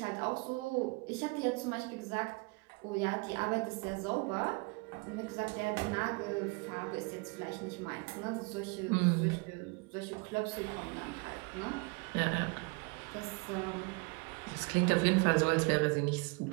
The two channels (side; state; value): left; quieter; 29.0 dB